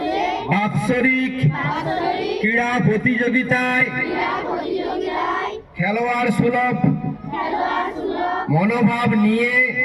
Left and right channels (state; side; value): identical; both; correlation 1.00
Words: বাৎসরিক ক্রীড়া প্রতিযোগিতায় খেলোয়াড় সুলভ মনোভাব নিয়ে